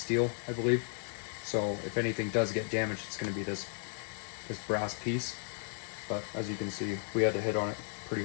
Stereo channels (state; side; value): silent; right; 55 dB below the other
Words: I believe. So if anything does get damaged, it's going to be this brass piece. But as you can see, we had to hit on it pretty